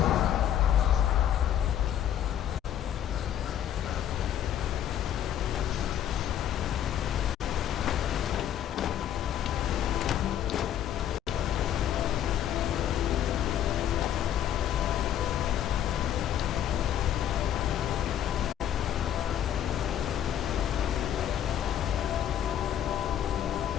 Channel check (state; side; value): quieter; right; 10.5 dB